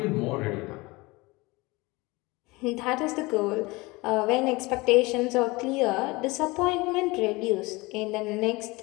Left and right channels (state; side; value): quieter; right; 23.2 dB